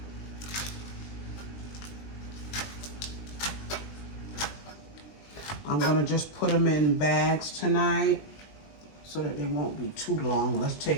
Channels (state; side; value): late; right; 20 ms